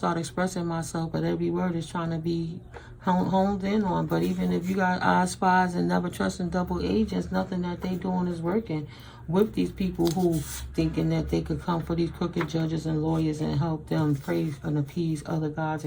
expressing myself, but every word is trying to be honed in on. But even if you got eye spies and never trusting double agents, nothing that they doing is working with these people who thinking that they could come for these crooked judges and lawyers and help them praise and appease other gods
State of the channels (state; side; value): identical; both; correlation 1.00